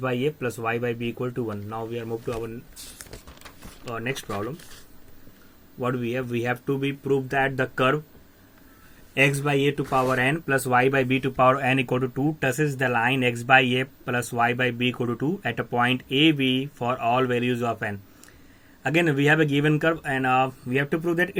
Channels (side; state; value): both; identical; correlation 1.00